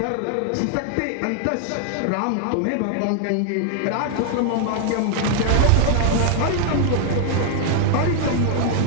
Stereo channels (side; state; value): both; different; correlation 0.00